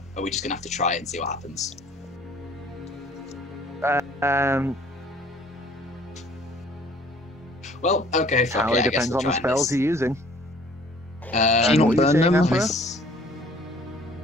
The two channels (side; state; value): both; normal; correlation 0.54